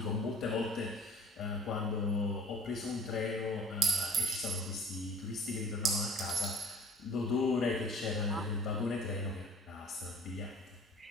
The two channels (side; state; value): both; normal; correlation 0.49